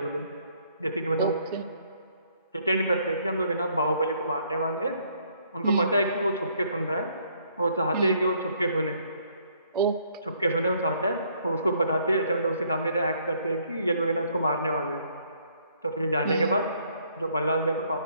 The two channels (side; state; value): both; inverted; correlation -0.66